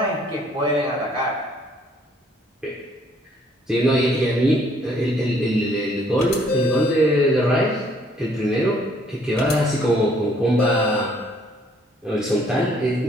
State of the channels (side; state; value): both; normal; correlation 0.63